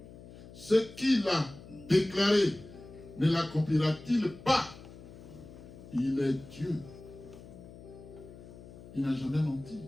Ce qu'il a déclaré, ne l'accomplira-t-il pas? Il est Dieu. Il n'a jamais menti.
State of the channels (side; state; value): left; noise; hum, 17 dB below the sound